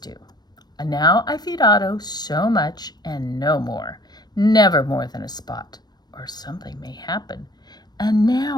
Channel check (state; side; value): late; right; 0.20 ms